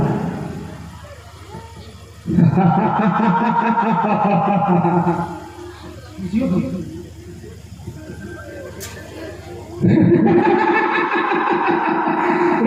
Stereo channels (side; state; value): both; identical; correlation 1.00